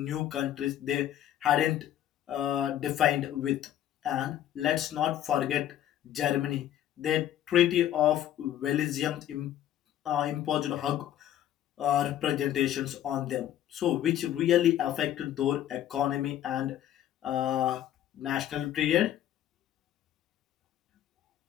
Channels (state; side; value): quieter; right; 11.6 dB